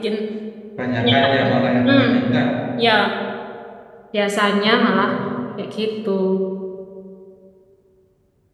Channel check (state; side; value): identical; both; correlation 1.00